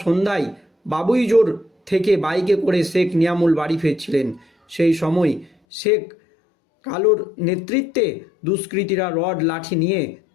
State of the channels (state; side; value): drops out; right; at 5.5 s